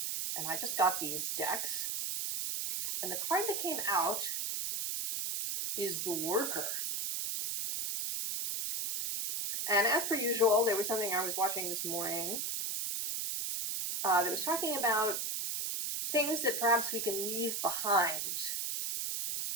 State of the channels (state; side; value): noise; right; hiss, 1 dB below the sound